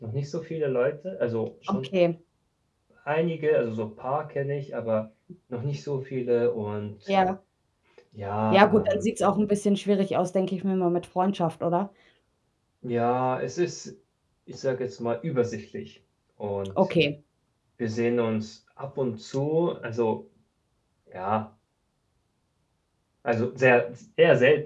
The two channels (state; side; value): identical; both; correlation 1.00